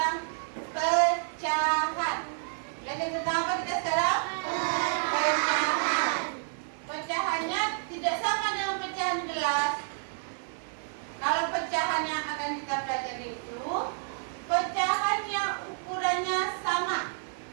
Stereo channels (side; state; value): left; silent; 58 dB below the other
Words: pecahan. Belajar tentang apa kita sekarang? Pecahan. Pecahannya tidak sama dengan pecahan gelas. Kalau pecahan yang akan kita pelajari itu, pecahan yang ukurannya sama.